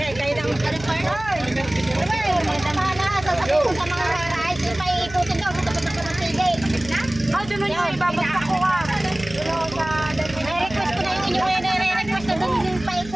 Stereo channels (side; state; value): right; noise; hum, 16 dB below the sound